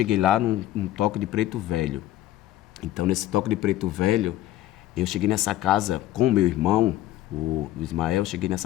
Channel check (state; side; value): quieter; right; 14.2 dB